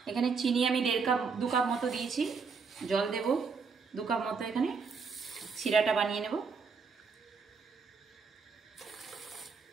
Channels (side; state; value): left; quieter; 5.1 dB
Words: এখানে চিনি আমি 2 কাপ মতো দিয়েছি, জল দেব 2 কাপ মতো। এখানে শিরাটা বানিয়ে নেব।